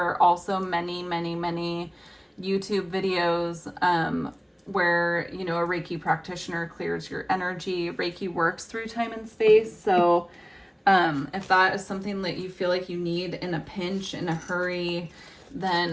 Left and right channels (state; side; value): identical; both; correlation 1.00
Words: are also many, many, many YouTube videos where, you know, a Reiki practitioner clears your energy. Reiki works through time and space, so if that is something that you feel like you need in a pinch, in a hurry,